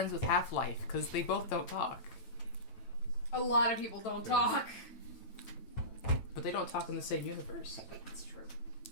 with Half-Life because they both don't talk. A lot of people don't talk. But they don't talk in the same universe. It's true.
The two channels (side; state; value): right; late; 9.0 ms